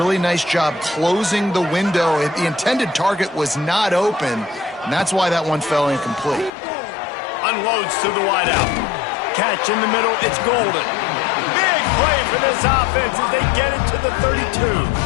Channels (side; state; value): right; drops out; at 6.5 s